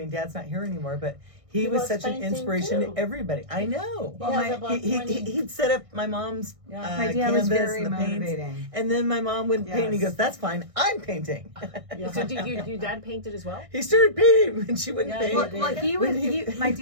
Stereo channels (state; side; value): late; left; 1.6 ms